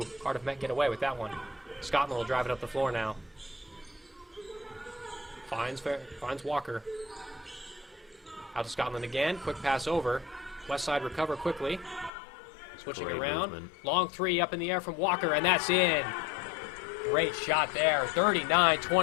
Cardiff Met get away with that one. Scotland will drive it up the floor now. Finds Walker. Out to Scotland again, quick pass over. Westside recover quickly. Switching Great around. movement. Long 3 up in the air from Walker, and that's in. Great shot there.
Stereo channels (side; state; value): right; drops out; at 12.1 s